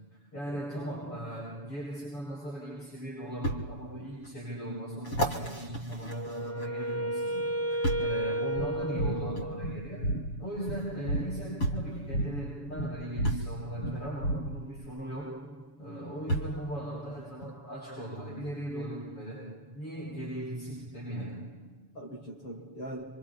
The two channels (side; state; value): right; late; 7.1 ms